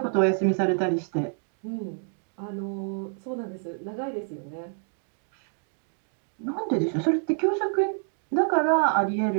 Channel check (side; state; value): left; silent; 60 dB below the other